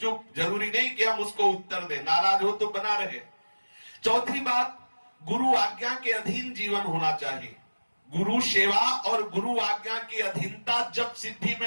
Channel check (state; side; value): inverted; both; correlation -1.00